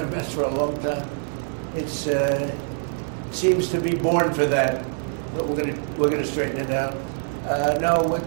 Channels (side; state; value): left; silent; digital silence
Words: mess for a long time. It's seems to be born for that, but we're gonna straighten it out. No,